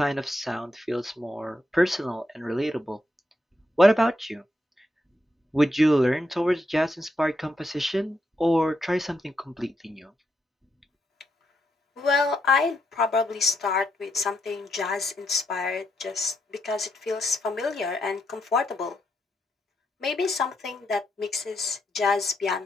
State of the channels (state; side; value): normal; both; correlation 0.80